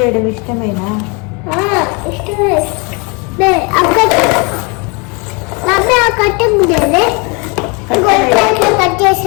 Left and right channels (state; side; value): quieter; right; 31.0 dB